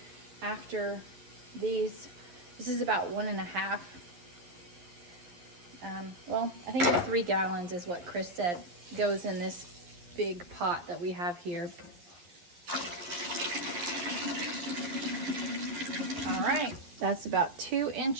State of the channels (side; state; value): left; late; 11 ms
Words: after these. This is about 1.5. Well, I think it's 3 gallons is what Chris said goes in this big pot that we have here. All right, that's about 2